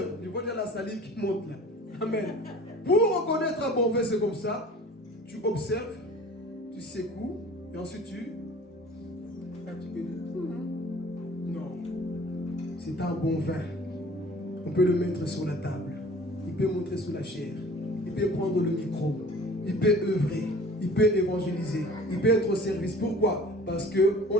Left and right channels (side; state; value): both; normal; correlation 0.46